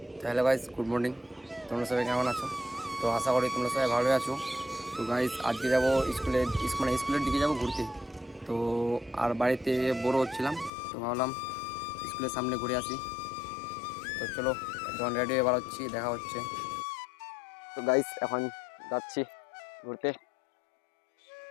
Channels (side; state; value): right; drops out; at 10.7 s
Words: Hello guys, good morning. তোমরা সবাই কেমন আছো? তো আশা করি তোমরা সবাই ভালোই আছো। তো গাইজ আজকে যাবো স্কুলের দিকে যাবো ঘুরতে। তো আর বাড়িতে বোর হচ্ছিলাম, তো ভাবলাম স্কুলের সামনে ঘুরে আসি। তো চলো, যখন রেডি হয়ে বার হচ্ছি, দেখা হচ্ছে। তো গাইজ এখন যাচ্ছি ঘুরতে।